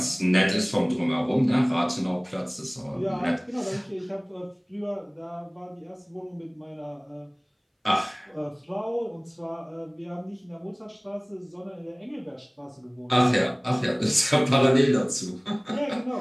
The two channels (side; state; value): both; identical; correlation 1.00